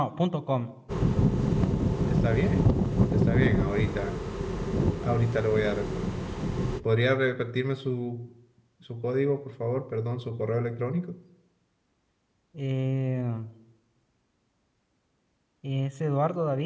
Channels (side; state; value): both; identical; correlation 1.00